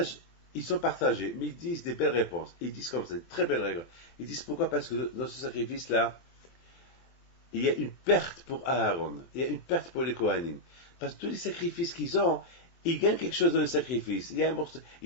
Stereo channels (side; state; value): right; late; 24 ms